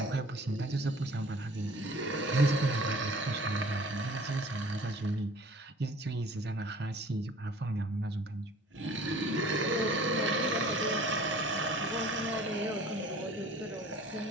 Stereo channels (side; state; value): both; normal; correlation 0.49